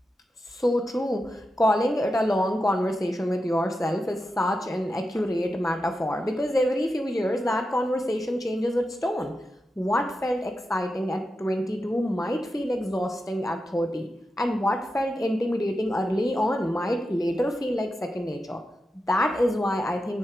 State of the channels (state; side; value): normal; both; correlation 0.89